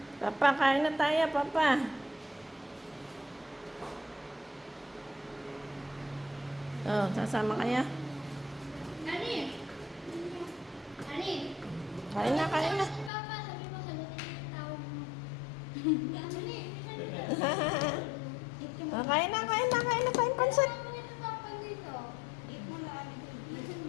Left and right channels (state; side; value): drops out; right; at 13.1 s